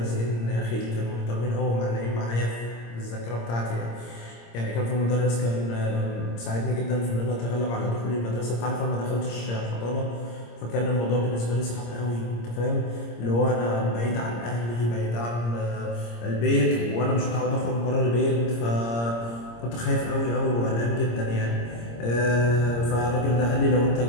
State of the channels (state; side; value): late; right; 26 ms